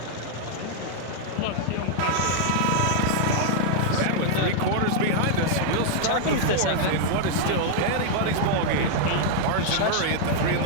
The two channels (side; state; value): both; different; correlation 0.00